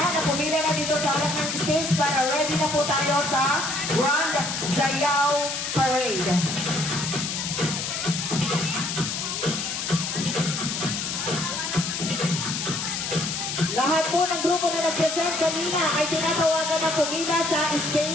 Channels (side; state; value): left; noise; hiss, 3 dB below the sound